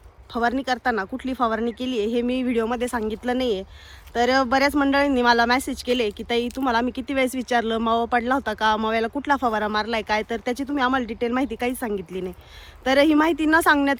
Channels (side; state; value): both; identical; correlation 1.00